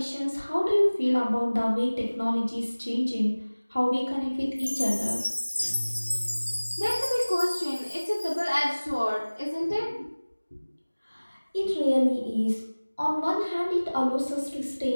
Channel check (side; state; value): both; inverted; correlation -1.00